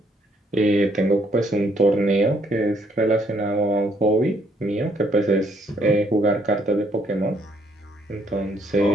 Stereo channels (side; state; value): both; normal; correlation 0.69